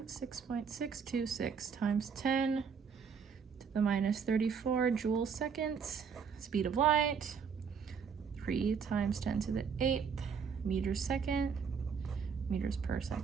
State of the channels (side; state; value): left; quieter; 6.4 dB